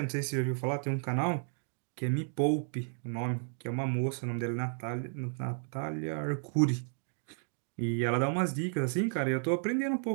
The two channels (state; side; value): silent; left; 56 dB below the other